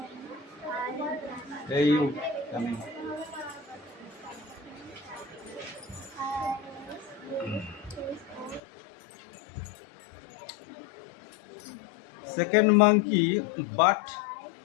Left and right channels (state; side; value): drops out; right; at 8.6 s